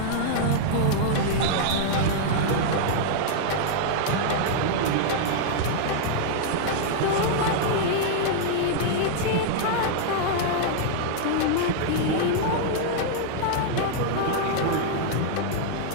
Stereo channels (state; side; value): different; both; correlation -0.01